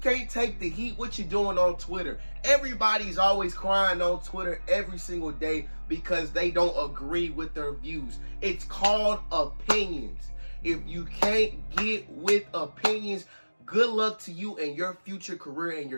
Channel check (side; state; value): both; inverted; correlation -1.00